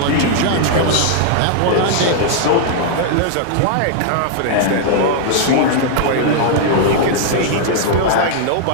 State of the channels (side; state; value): both; different; correlation 0.00